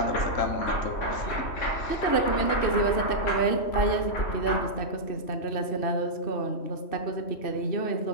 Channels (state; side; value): late; right; 3.1 ms